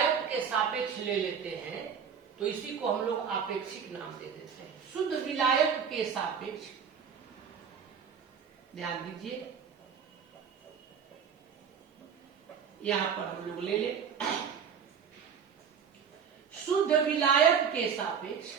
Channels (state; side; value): quieter; left; 7.1 dB